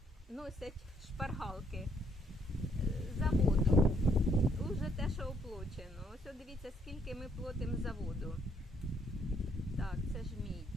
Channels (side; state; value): both; normal; correlation 0.69